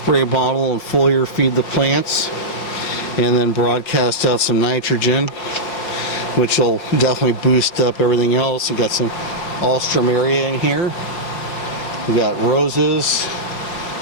bottle and foliar feed the plants. And then broadcast out some nitrogen, which will definitely boost up everything else. You got some alstrom area in here. We got roses,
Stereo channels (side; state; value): right; late; 5.3 ms